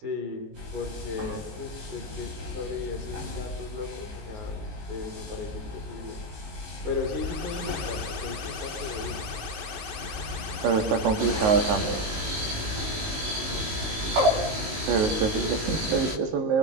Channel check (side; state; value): left; late; 19 ms